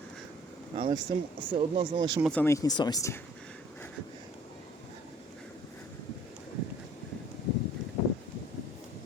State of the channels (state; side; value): normal; both; correlation 0.55